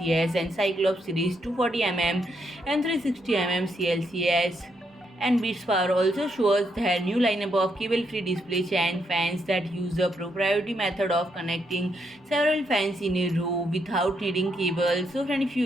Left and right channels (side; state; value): both; normal; correlation 0.77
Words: and Cyclops series 240mm and 360mm CLCS. And Bitspower also shows their new lineup of cable-free display fan fans that use a proprietary method of connecting several fans in a row without needing cables. So friend, if